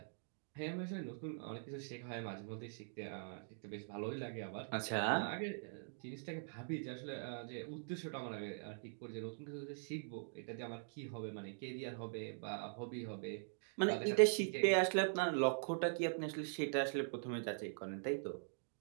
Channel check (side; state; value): left; silent; digital silence